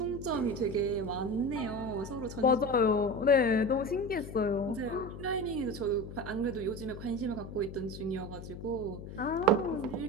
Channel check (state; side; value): noise; left; hum, 11 dB below the sound